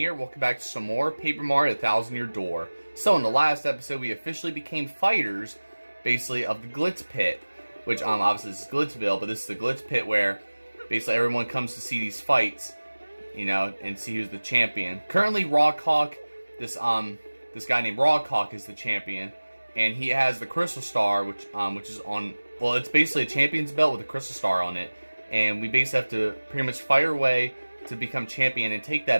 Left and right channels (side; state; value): both; inverted; correlation -1.00